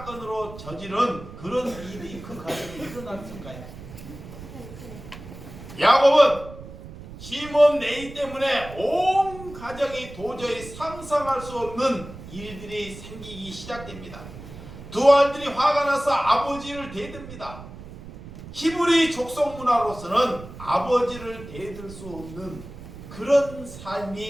저지른 그런 일이 그 가정에 일어났을까요? 야곱은 시몬 네이 때문에 온 가정이 도저히 상상할 수 없는 일들이 생기기 시작됩니다. 두 아들이 화가 나서 아버지를 대듭니다. 히브리 족속 문화로서는 아버지를 대들 수 없는 그런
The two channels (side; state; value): right; noise; rumble, 14 dB below the sound